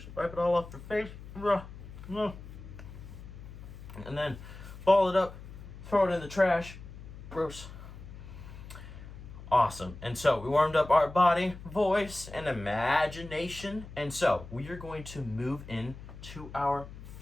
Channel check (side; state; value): left; noise; hum, 14 dB below the sound